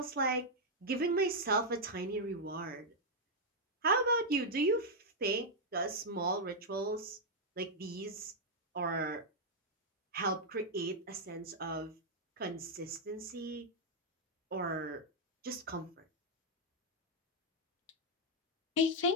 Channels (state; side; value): normal; both; correlation -0.03